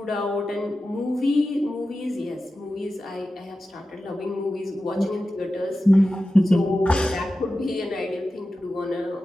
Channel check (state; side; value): normal; both; correlation 0.93